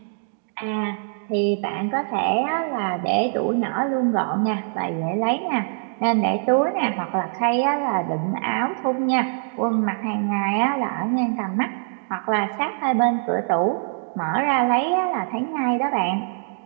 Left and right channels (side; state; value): left; silent; digital silence